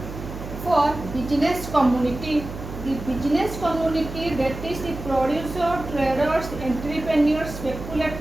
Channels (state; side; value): noise; right; hum, 10 dB below the sound